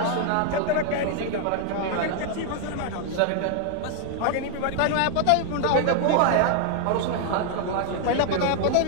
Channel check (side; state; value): both; different; correlation 0.00